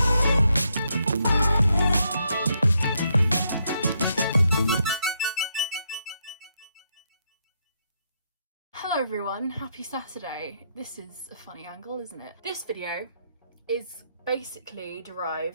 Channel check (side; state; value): both; inverted; correlation -0.77